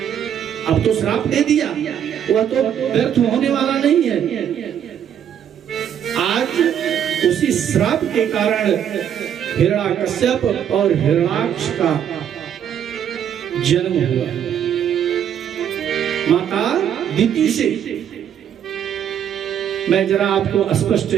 अब तो श्राप दे दिया, वह तो व्यर्थ होने वाला नहीं है। आज उसी श्राप के कारण हिरण्याकश्यप और हिरण्याक्ष का जन्म हुआ माता दिति से। मैं जरा आपको स्पष्ट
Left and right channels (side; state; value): left; quieter; 9.3 dB